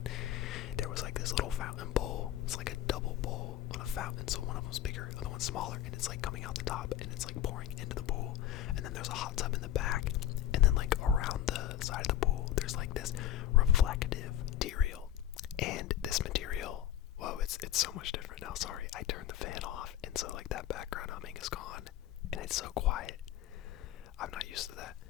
There was like this little fountain bowl. It's like a double bowl on a fountain, so one of them's bigger, the other one's smaller, and it's like coming out the top, and it's like pouring into the pool. And then there's a hot tub in the back, and then like around the side of the pool, there's like this reflective material. And this material, whoa, it's so much different now. Sorry, I turned the fan off, and so like that background humming is gone, and it's so quiet. I'm not used to that.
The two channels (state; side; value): quieter; right; 12.1 dB